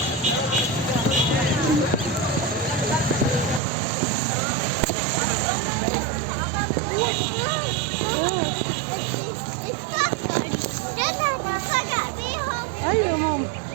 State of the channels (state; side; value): drops out; left; at 3.6 s